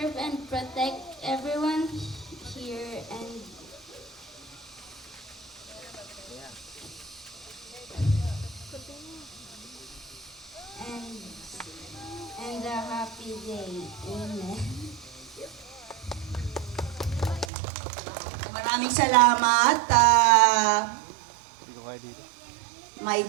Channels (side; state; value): left; drops out; at 17.5 s